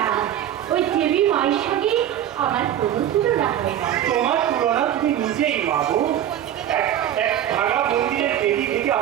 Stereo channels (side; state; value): left; quieter; 11.2 dB